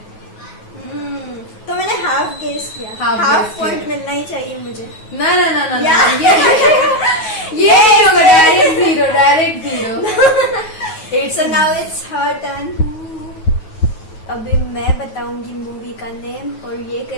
तो मैंने हाफ गेस किया। हाफ पॉइंट मिलना ही चाहिए मुझे। ना ये direct zero. now it's her turn. अभी मैं बताऊंगी मूवी का नेम और ये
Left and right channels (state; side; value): late; right; 9.3 ms